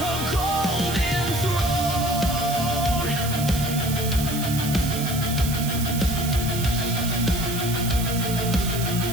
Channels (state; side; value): noise; right; hiss, 7 dB below the sound